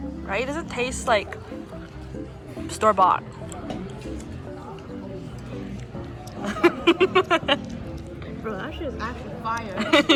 It doesn't taste like store-bought. Bro, that shit is actually fire.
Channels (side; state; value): both; identical; correlation 1.00